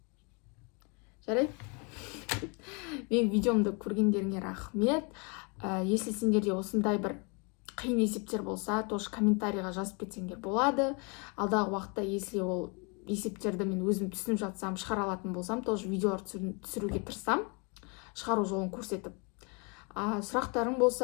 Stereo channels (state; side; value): quieter; right; 33.3 dB